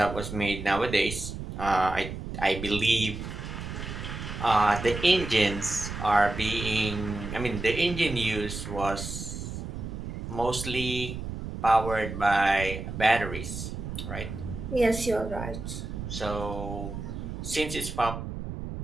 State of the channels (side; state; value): right; noise; rumble, 7 dB below the sound